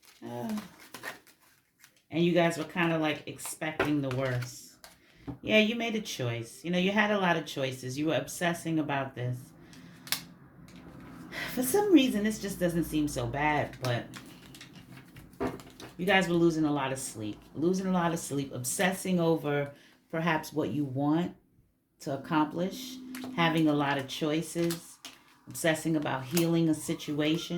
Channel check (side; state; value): both; identical; correlation 1.00